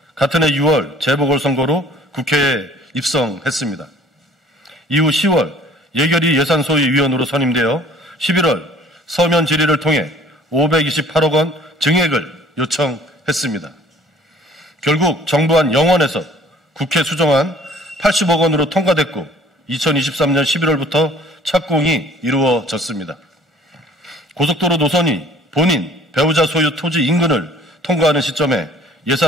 같은 해 6월 재보궐선거로 국회에 입성했습니다. 이후 10월 예결위 예산소위위원으로 선임되어 11월 서면 질의를 통해 528억 원 증액을 요청했습니다. 결국 정부안 영원에서 국회 수정안 80억 원으로 통과됐고 2023년 11월부터 착공이 이루어졌습니다. 고속도로 노선이 본인, 배우자 소유 토지 인근을 통과하는 시점에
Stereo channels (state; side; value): normal; both; correlation 0.53